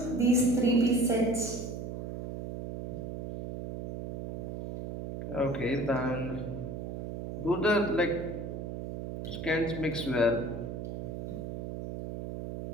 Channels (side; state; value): right; noise; hum, 6 dB below the sound